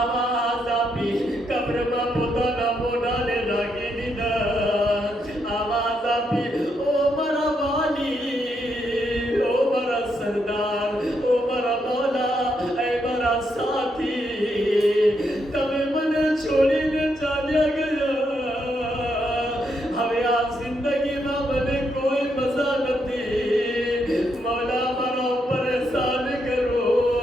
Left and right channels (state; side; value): normal; both; correlation 0.78